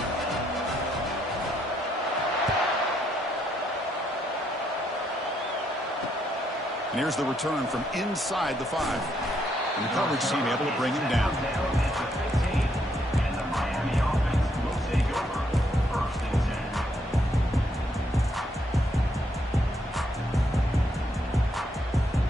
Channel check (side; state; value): both; normal; correlation 0.74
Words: And here's the return from inside the 5. And the coverage team able to bring him down. And the Miami offense will take over. 1st and 10.